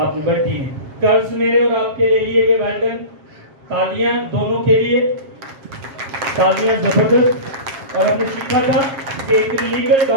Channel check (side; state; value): left; late; 7.4 ms